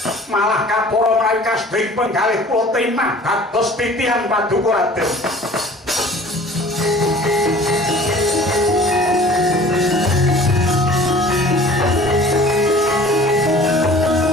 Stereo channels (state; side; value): normal; both; correlation 0.46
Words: Malah kapara menawi kasbing penggalih kula temah dados titihan paduka Raden.